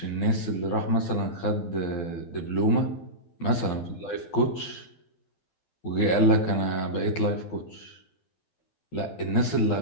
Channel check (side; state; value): right; late; 12 ms